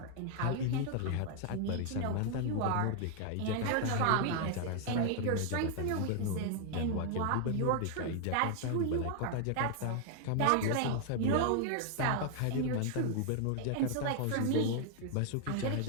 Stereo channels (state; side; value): different; both; correlation 0.00